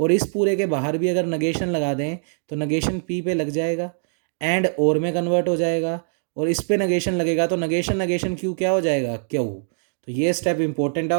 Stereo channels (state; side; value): silent; left; digital silence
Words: इस पूरे के बाहर भी अगर नगेशन लगा दें तो नगेशन पी पे लग जाएगा एंड और में कन्वर्ट हो जाएगा, और इस पे नगेशन लगेगा तो नगेशन नगेशन क्यू क्या हो जाएगा क्यू। तो ये स्टेप इंपॉर्टेंट है,